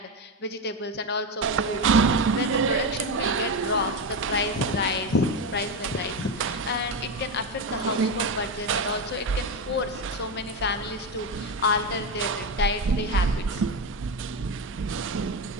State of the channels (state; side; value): normal; both; correlation 0.13